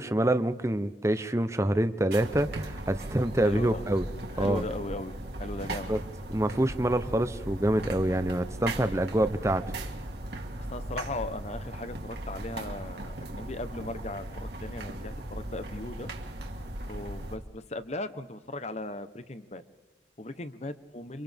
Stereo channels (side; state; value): both; normal; correlation 0.78